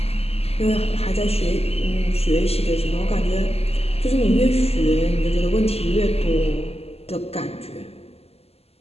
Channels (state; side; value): late; right; 0.29 ms